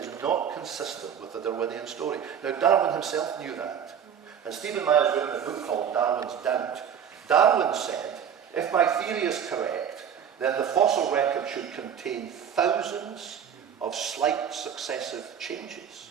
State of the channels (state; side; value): quieter; left; 8.3 dB